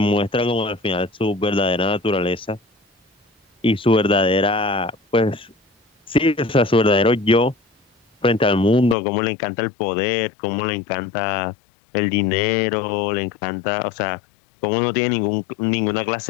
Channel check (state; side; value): drops out; right; at 9.0 s